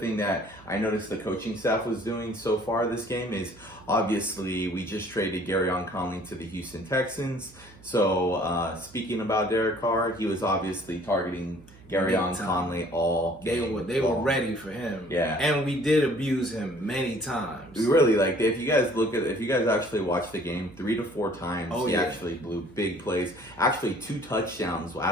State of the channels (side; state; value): right; noise; hum, 23 dB below the sound